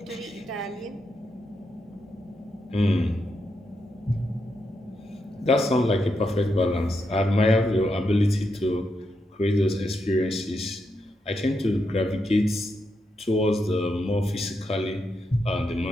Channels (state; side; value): normal; both; correlation 0.83